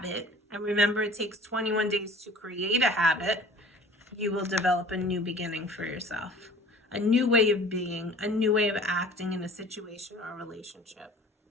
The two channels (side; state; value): both; normal; correlation 0.47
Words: and remember it takes 21 days to create a habit, you will develop a new beginning for yourself. A new way of being, a new way of acting in a situation or a relationship.